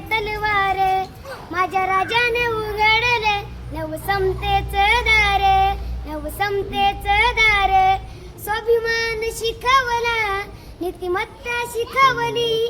तलवार, माझ्या राजाने उघडले नवसमतेच दार, नवसमतेच दार. स्वाभिमान शिकवला, नीतिमत्ता शिकवली,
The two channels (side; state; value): both; identical; correlation 1.00